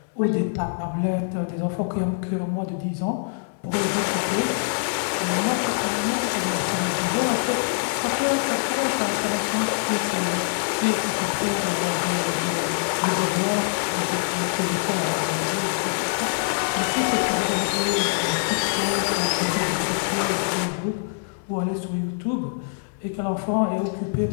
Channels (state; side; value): silent; right; digital silence